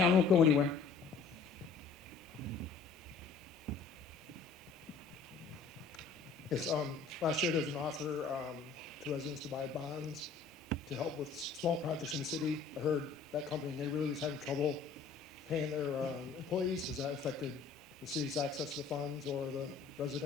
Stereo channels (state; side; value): quieter; right; 5.0 dB